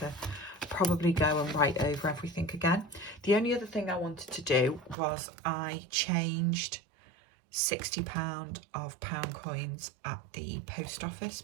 probably go and write over everything again. The only other thing I wanted to do was I changed £60 of pound coins at the post office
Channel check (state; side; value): drops out; left; at 5.0 s